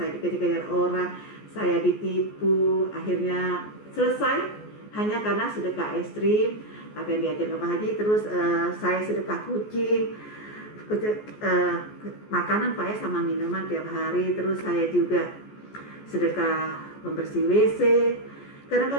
dikejar-kejar orang, saya ditipu, akhirnya selesai hanya karena sedekah ekstrim apa yang diajarkan Pak Haji. Terus saya sedekah kucing, makanan Pak ya, sama minuman tiap hari. Terus saya juga sedekah pembersih WC.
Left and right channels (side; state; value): right; late; 14 ms